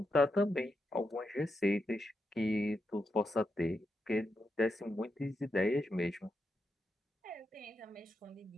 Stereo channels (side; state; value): both; normal; correlation 0.85